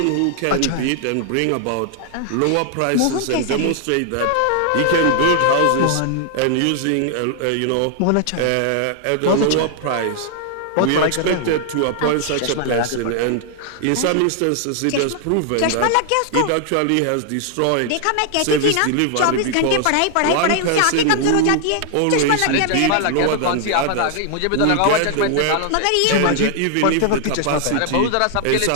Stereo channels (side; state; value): both; different; correlation 0.00